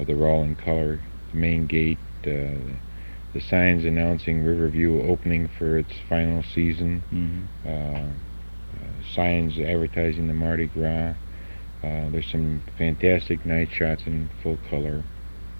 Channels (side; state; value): both; inverted; correlation -1.00